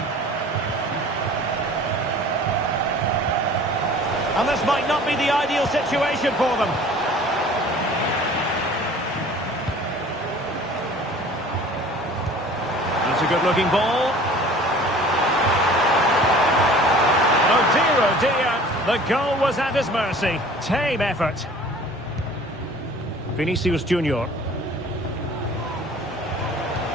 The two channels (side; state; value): both; normal; correlation 0.47